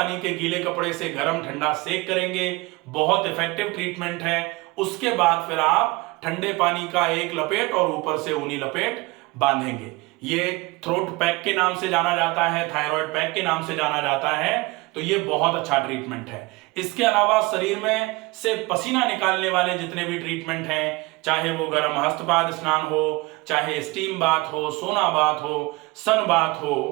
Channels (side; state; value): left; quieter; 23.5 dB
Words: के गीले कपड़े से गर्म ठंडा सेक करेंगे, बहुत इफेक्टिव ट्रीटमेंट है। उसके बाद फिर आप ठंडे पानी का एक लपेट और ऊपर से ऊनी लपेट बांधेंगे। ये थ्रोट पैक के नाम से जाना जाता है, थायराइड पैक के नाम से जाना जाता है। तो ये बहुत अच्छा ट्रीटमेंट है। इसके अलावा शरीर में से पसीना निकालने वाले जितने भी ट्रीटमेंट हैं, चाहे वो गर्म हस्तपाद स्नान हो, चाहे स्टीम बाथ हो, सोना बाथ हो, सन बाथ